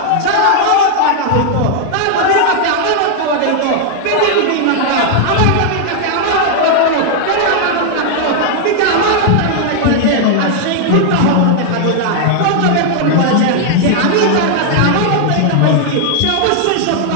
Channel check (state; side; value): different; both; correlation 0.00